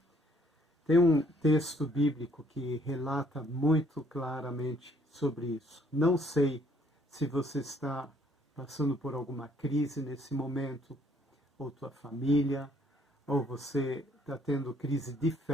Tem um texto bíblico que relata muito claramente sobre isso. Não sei se você está passando por alguma crise nesse momento, ou tua família, ou você está tendo crise de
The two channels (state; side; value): normal; both; correlation 0.64